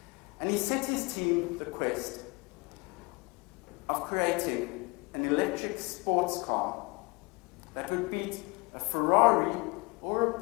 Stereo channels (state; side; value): quieter; right; 27.5 dB